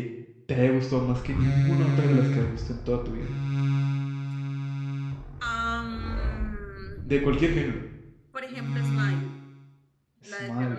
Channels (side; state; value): both; identical; correlation 1.00